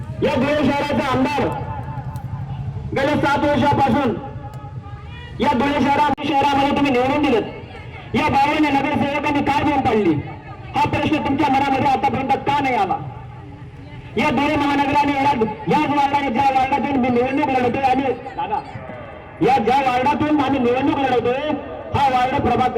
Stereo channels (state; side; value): identical; both; correlation 1.00